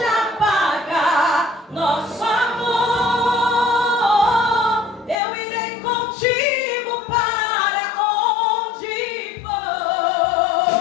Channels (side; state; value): right; drops out; at 5.2 s